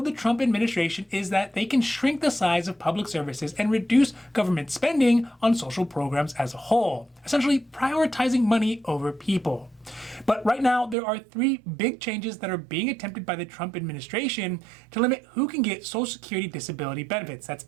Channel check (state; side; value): drops out; left; at 11.0 s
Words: the Trump administration is that they can shrink the size of public services and reduce government spending on social programs as a whole, essentially prioritizing money over people. But right now, there are three big changes that are being attempted by the Trump administration to limit who can get Social Security disability benefits, that's